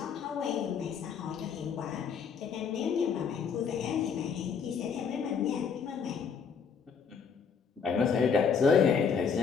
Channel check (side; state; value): right; quieter; 6.3 dB